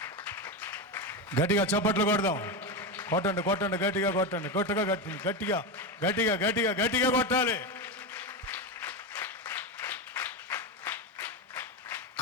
గట్టిగా చప్పట్లు కొడదాం. కొట్టండి కొట్టండి, గట్టిగా కొట్టండి, గట్టిగా గట్టిగా గట్టిగా గట్టిగా గట్టిగా కొట్టాలి.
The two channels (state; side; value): normal; both; correlation 0.15